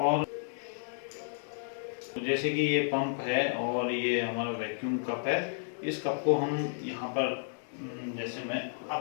और जैसे कि ये पंप है और ये हमारा वैक्यूम कप है, इस कप को हम यहाँ पर जैसे मैं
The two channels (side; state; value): right; silent; digital silence